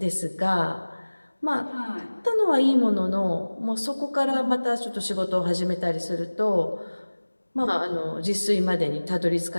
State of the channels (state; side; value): inverted; both; correlation -1.00